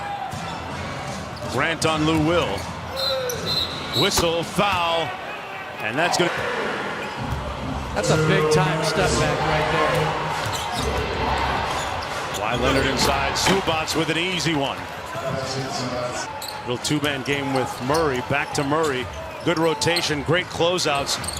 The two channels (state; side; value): identical; both; correlation 1.00